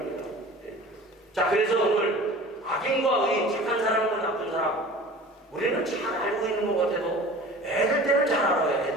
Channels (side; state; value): both; normal; correlation 0.41